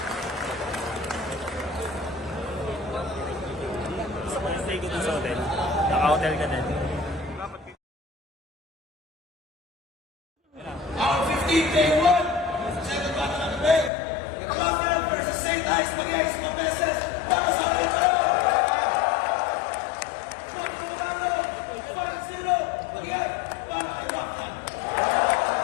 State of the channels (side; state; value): right; drops out; at 13.9 s